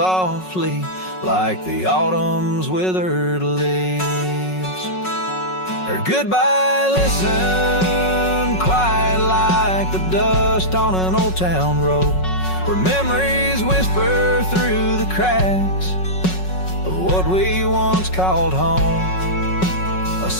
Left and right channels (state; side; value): late; right; 5.4 ms